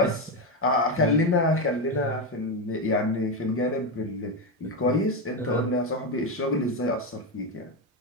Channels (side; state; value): both; normal; correlation 0.11